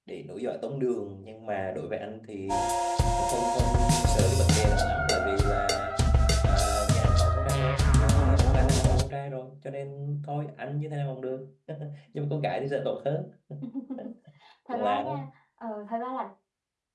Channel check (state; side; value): identical; both; correlation 1.00